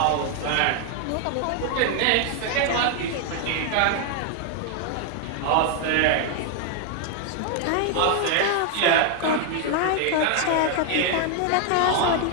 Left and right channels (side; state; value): both; different; correlation 0.00